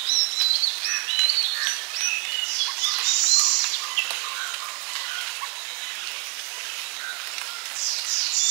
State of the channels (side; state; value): left; quieter; 31.9 dB